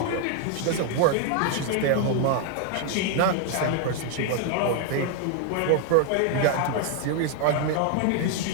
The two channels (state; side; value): different; both; correlation 0.00